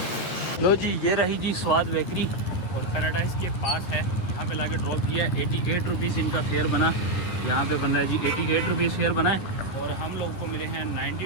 लो जी ये रही जी स्वाद बेकरी, और पैराडाइज के पास है। यहाँ पे लाके ड्रॉप किया है। 88 रुपीज़ इनका फेयर बना, यहाँ पे बन रहा है जी 88 रुपीज़ फेयर बना है। और हम लोग को मिले हैं 90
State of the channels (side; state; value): right; late; 11 ms